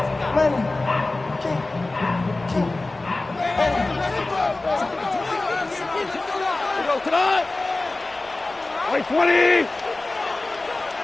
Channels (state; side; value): quieter; right; 3.1 dB